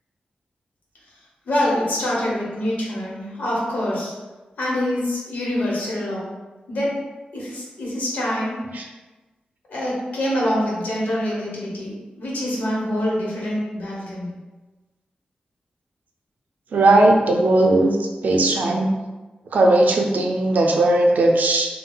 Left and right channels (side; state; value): both; normal; correlation 0.82